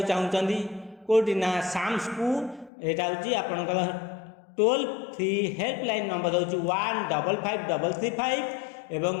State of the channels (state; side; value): drops out; right; at 2.7 s